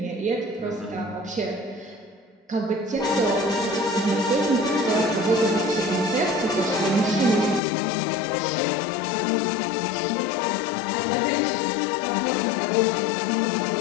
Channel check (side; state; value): right; drops out; at 7.6 s